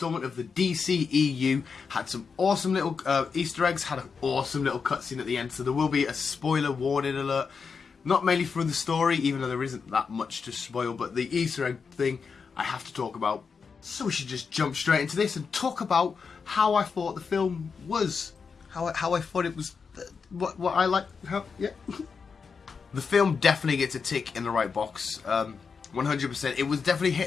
of the DCEU had some awesome little Easter eggs, had an awesome little cutscene at the end, so there will be a spoiler warning alert. Not mainly for the story, even though there isn't that much to spoil, but the Easter egg thing I have to talk about. So we should just jump straight into this and talk about how I thought the film was. How I thought it was, what I like, yeah. The film definitely gets a tick in the right box, 100%. It was definitely hit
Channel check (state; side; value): quieter; right; 5.5 dB